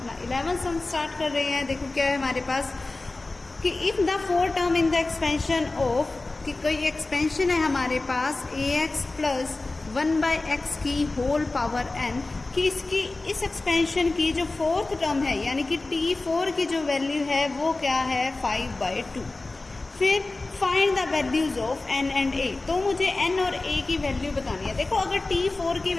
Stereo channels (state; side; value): quieter; right; 3.2 dB